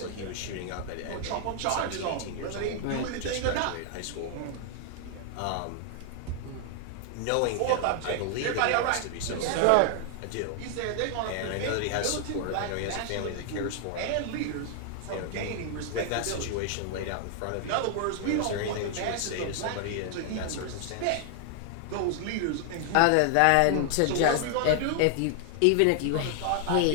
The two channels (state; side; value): different; both; correlation 0.00